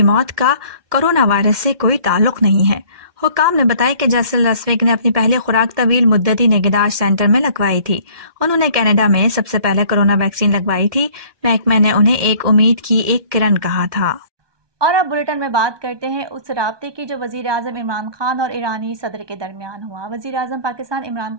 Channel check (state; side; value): late; left; 1.2 ms